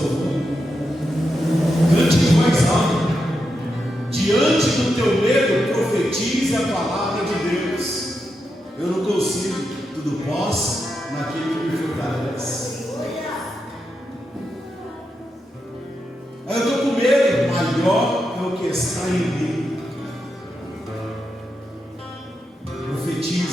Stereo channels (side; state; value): both; normal; correlation 0.86